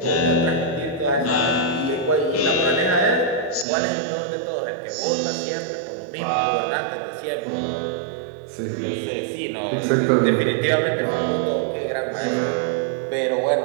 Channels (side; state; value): left; drops out; at 3.7 s